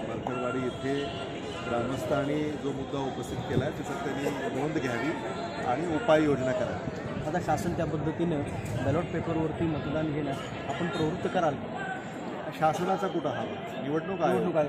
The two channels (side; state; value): both; identical; correlation 1.00